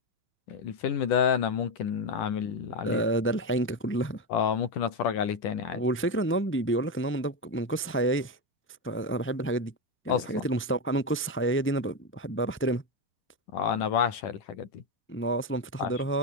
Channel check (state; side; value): normal; both; correlation 0.11